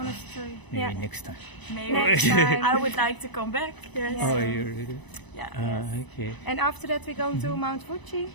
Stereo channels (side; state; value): right; late; 1.0 ms